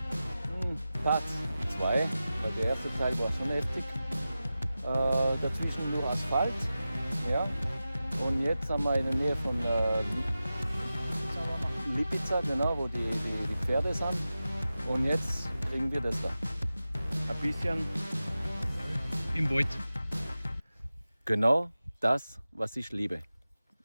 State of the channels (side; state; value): both; inverted; correlation -0.94